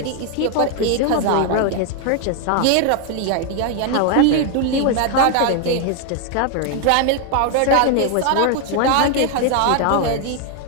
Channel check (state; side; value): different; both; correlation 0.00